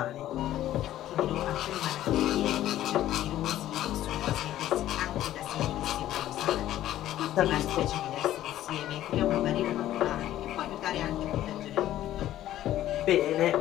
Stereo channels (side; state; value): right; quieter; 13.2 dB